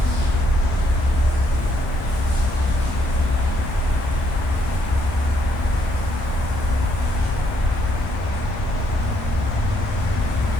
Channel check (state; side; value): normal; both; correlation 0.72